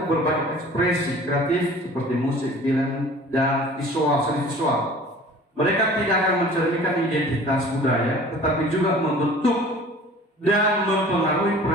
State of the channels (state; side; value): normal; both; correlation 0.46